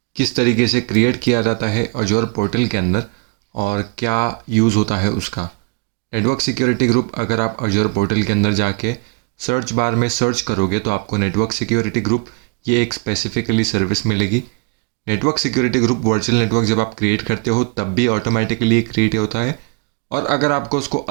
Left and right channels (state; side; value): quieter; left; 30.9 dB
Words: किस तरीके से क्रिएट किया जाता है अजोर पोर्टल के अंदर और क्या यूज़ होता है उसका। नेटवर्क सिक्योरिटी ग्रुप अगर आप अजोर पोर्टल के अंदर जाके सर्च बार में सर्च करोगे तो आपको नेटवर्क सिक्योरिटी ग्रुप ये एक स्पेसिफिकली सर्विस मिलेगी। Network security group virtual network जब आप क्रिएट करते हो तब भी ऑटोमेटिकली क्रिएट होता है, और अगर आपको उसको